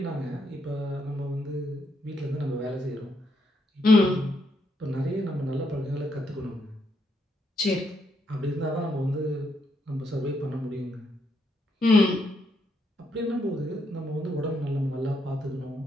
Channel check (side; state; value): both; normal; correlation 0.77